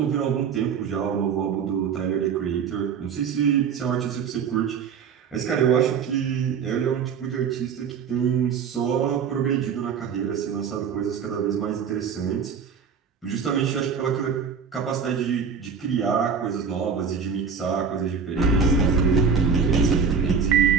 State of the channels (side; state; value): left; quieter; 6.4 dB